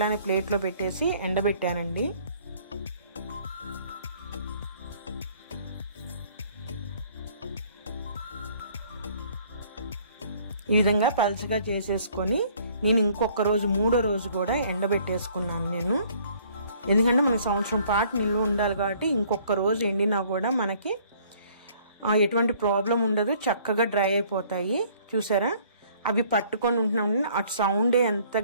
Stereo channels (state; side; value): inverted; both; correlation -0.58